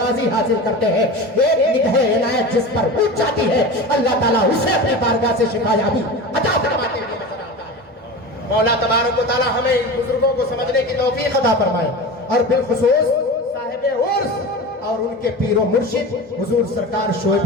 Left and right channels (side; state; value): both; normal; correlation 0.30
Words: حاصل کرتے ہیں، ایک نگاہ عنایت جس پر اٹھ جاتی ہے اللہ تعالیٰ اسے اپنی بارگاہ سے شفا یابی عطا فرماتے ہوئے نظر آتا ہے۔ مولا تبارک و تعالیٰ ہمیں ان بزرگوں کو سمجھنے کی توفیق عطا فرمائے، اور بالخصوص صاحب عرس اور ان کے پیر و مرشد حضور سرکار شعیب